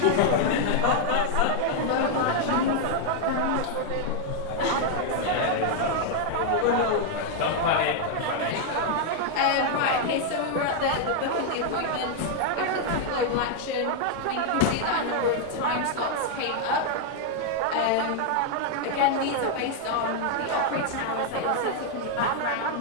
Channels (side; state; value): both; different; correlation 0.00